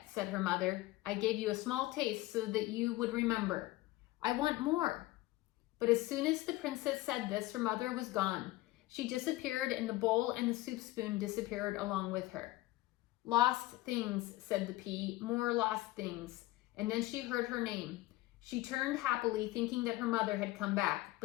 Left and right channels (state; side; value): quieter; right; 18.2 dB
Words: said her mother. "I gave you a small taste so that you would remember. I want more." But as soon as the princess said this, her mother was gone. She disappeared, and the bowl and the soup spoon disappeared along with her. "Lost things," said the pea, "more lost things." And then she heard her name. She turned happily, thinking that her mother had come back,